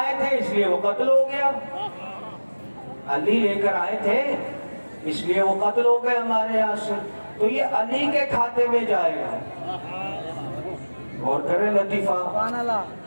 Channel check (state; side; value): inverted; both; correlation -1.00